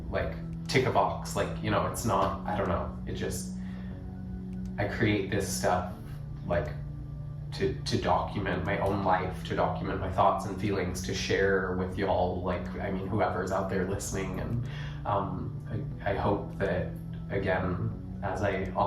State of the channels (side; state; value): both; identical; correlation 1.00